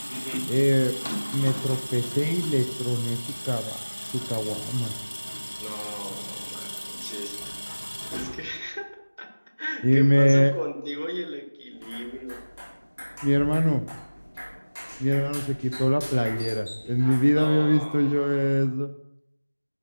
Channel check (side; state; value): both; inverted; correlation -1.00